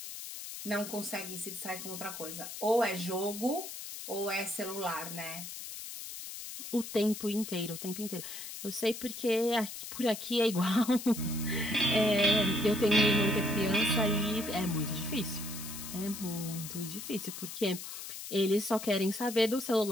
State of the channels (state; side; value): noise; left; hiss, 9 dB below the sound